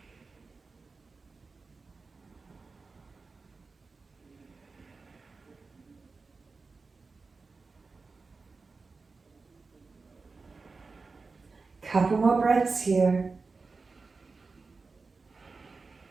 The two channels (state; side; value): quieter; left; 4.2 dB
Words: Couple more breaths here.